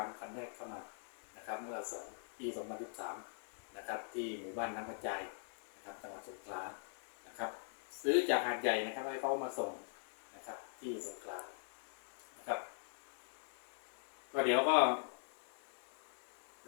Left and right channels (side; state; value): right; silent; digital silence